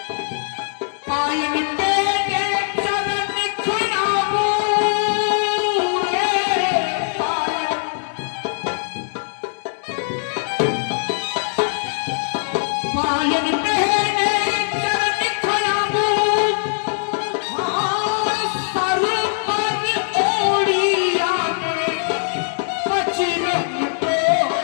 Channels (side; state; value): right; silent; digital silence